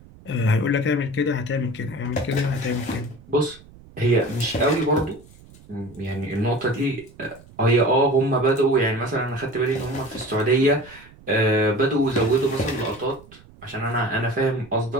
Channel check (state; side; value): noise; right; rumble, 23 dB below the sound